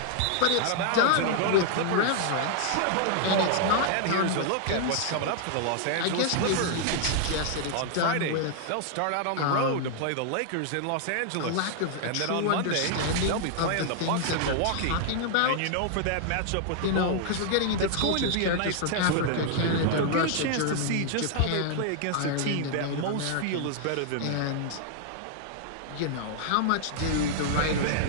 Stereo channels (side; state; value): both; different; correlation -0.01